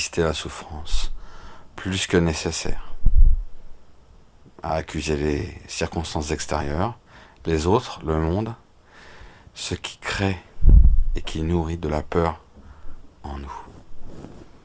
la souffrance plus que nécessaire, à accuser les circonstances extérieures, les autres, le monde, ce qui crée et qui nourrit de la peur en nous.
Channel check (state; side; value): identical; both; correlation 1.00